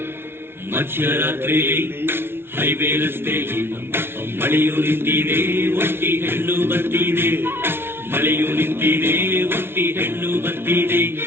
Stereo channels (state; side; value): late; left; 0.11 ms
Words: ಮಧ್ಯರಾತ್ರಿಲಿ highway ರಸ್ತೆಯಲ್ಲಿ ಮಳೆಯು ನಿಂತಿದೆ, ಒಟ್ಟಿ ಹೆಣ್ಣು ಬರ್ತಿದೆ. ಮಳೆಯು ನಿಂತಿದೆ, ಒಟ್ಟಿ ಹೆಣ್ಣು ಬರ್ತಿದೆ.